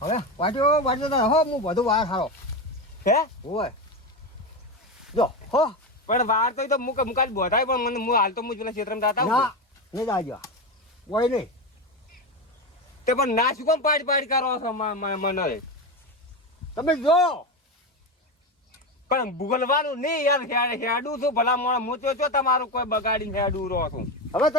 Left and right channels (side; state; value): both; normal; correlation 0.17